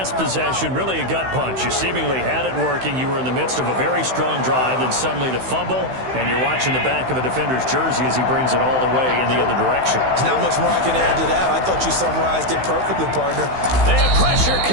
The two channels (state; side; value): late; left; 16 ms